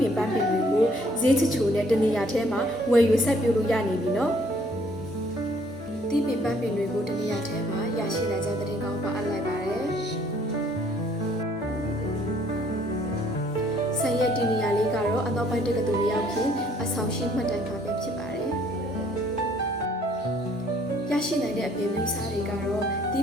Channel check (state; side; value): normal; both; correlation 0.62